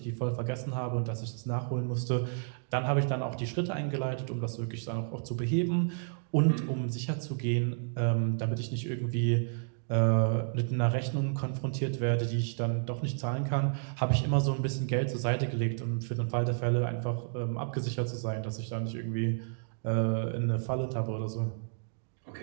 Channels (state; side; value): silent; left; digital silence